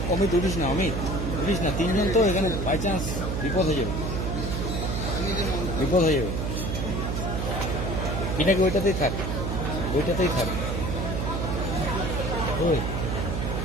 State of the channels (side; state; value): right; noise; hum, 1 dB below the sound